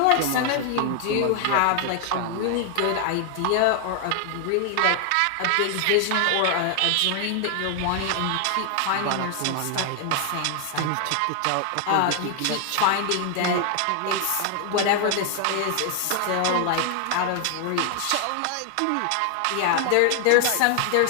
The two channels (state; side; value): different; both; correlation 0.00